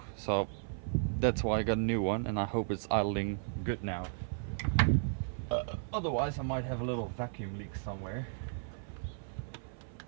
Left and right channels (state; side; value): silent; left; 55 dB below the other